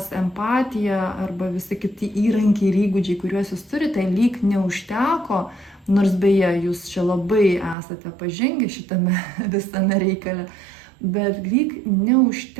empatija arba visi kiti įrankiai ir įgūdžiai, kuriuos jūs turite, lyg neužteko Nors beje, jūs čia labai esate pažengę šitame visame reikale, bet lyg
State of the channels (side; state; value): left; drops out; at 7.8 s